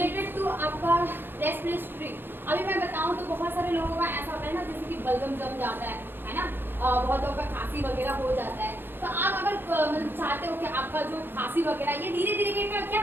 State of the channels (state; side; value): late; left; 0.10 ms